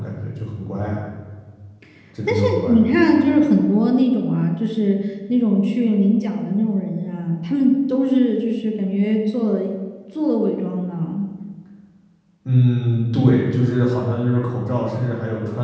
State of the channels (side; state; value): both; identical; correlation 1.00